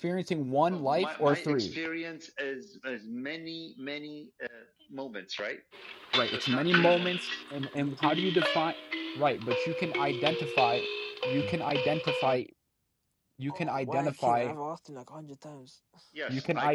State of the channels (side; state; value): both; identical; correlation 1.00